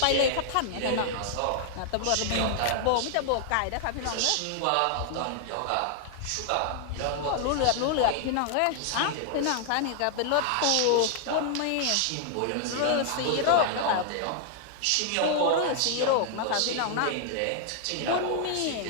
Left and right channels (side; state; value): both; different; correlation 0.00